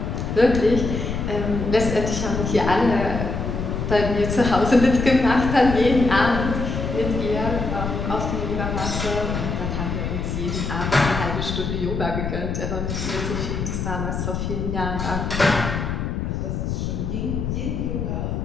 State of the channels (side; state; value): left; noise; rumble, 3 dB below the sound